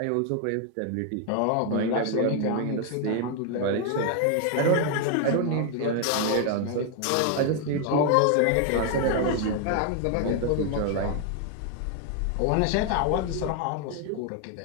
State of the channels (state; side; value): different; both; correlation 0.01